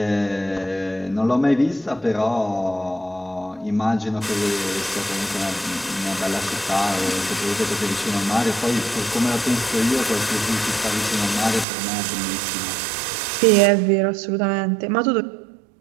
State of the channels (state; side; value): drops out; left; at 11.7 s